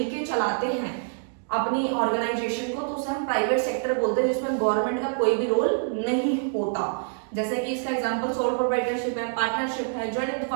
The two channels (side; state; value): left; silent; digital silence